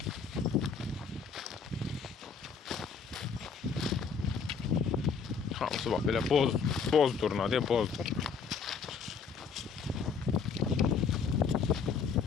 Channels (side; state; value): right; quieter; 5.8 dB